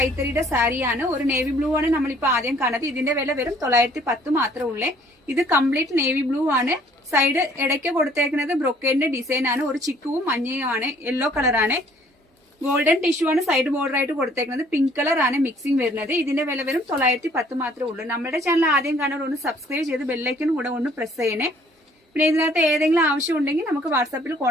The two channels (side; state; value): both; normal; correlation 0.59